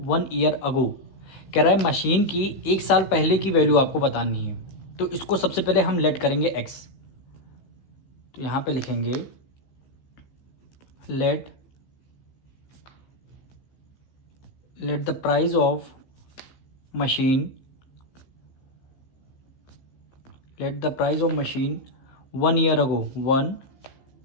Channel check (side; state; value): right; late; 15 ms